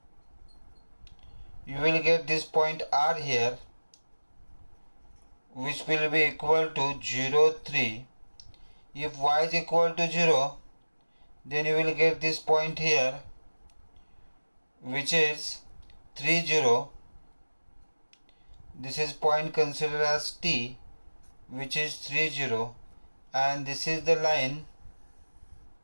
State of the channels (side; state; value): both; inverted; correlation -1.00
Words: you will get this point R here, which will be equal to 0, 3. If y is equal to 0, then you will get this point here, which is 3, 0. This is point considered as T, which is 3, 0, and this is the line